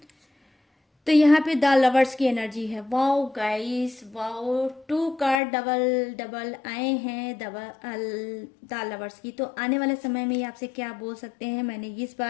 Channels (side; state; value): right; drops out; at 5.4 s